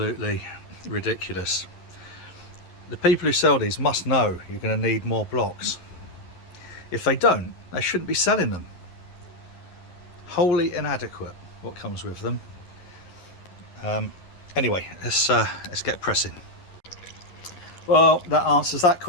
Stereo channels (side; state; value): right; late; 11 ms